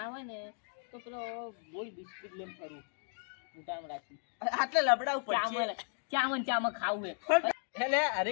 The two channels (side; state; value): right; silent; 54 dB below the other